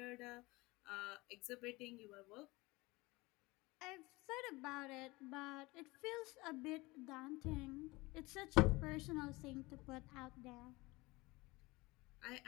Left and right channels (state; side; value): quieter; right; 22.4 dB